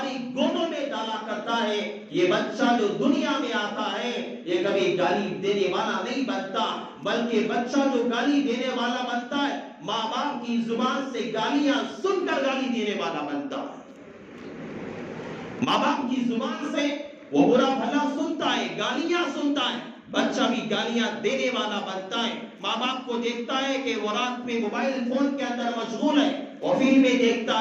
گودوں میں ڈالا کرتا ہے، یہ بچہ جو دنیا میں آتا ہے یہ کبھی گالی دینے والا نہیں بنتا، بلکہ بچہ جو گالی دینے والا بنتا ہے ماں باپ کی زبان سے گالیاں سن کر گالی دینے والا بنتا ہے. ماں باپ کی زبان سے وہ برا بھلا سنتا ہے، گالیاں سنتا ہے، بچہ بھی گالیاں دینے والا بنتا ہے. ماں باپ کو دیکھتا ہے کہ وہ رات میں موبائل فون کے اندر مشغول ہے، وہ فلمیں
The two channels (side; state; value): both; identical; correlation 1.00